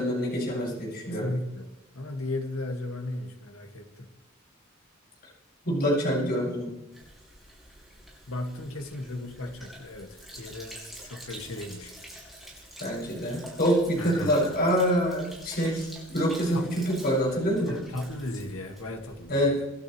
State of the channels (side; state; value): both; normal; correlation 0.45